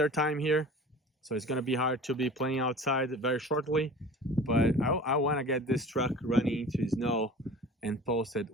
time here, so it's gonna be hard to be playing outside very shortly, but I want to get this truck running into snow and post it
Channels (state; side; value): normal; both; correlation 0.41